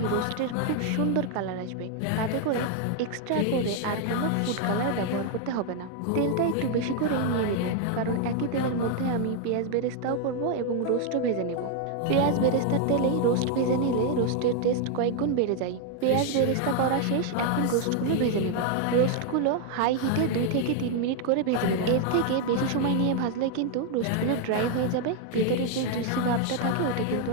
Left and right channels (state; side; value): different; both; correlation 0.00